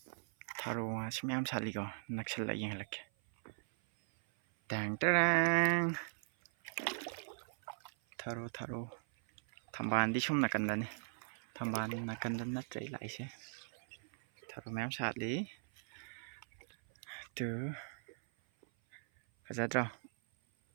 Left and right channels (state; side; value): silent; left; 52 dB below the other